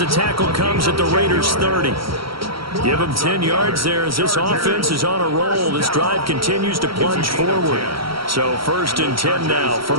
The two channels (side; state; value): left; late; 0.75 ms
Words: tackle comes at the Raiders' 30. Give him 10 yards there as this offense is on a roll. This drive continues to plunge forward. So 1st and 10 now